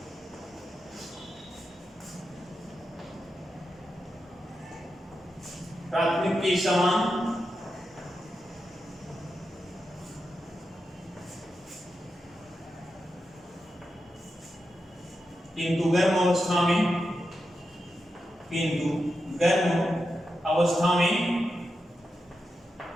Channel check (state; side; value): normal; both; correlation 0.88